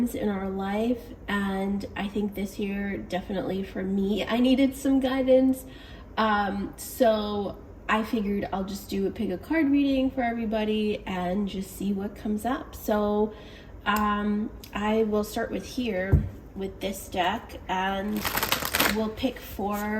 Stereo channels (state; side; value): identical; both; correlation 1.00